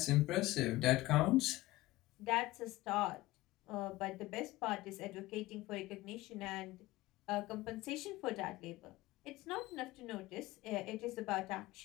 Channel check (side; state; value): right; quieter; 18.3 dB